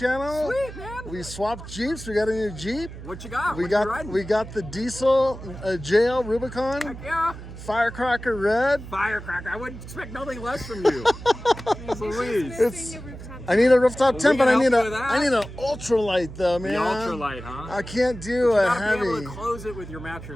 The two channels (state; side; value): noise; right; hum, 12 dB below the sound